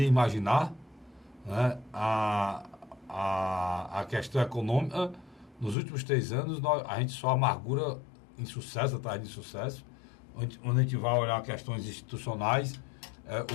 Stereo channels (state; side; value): drops out; right; at 5.8 s